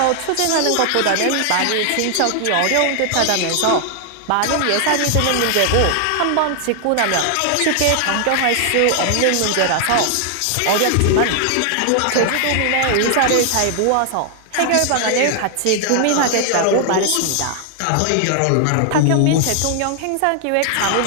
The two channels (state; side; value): different; both; correlation 0.00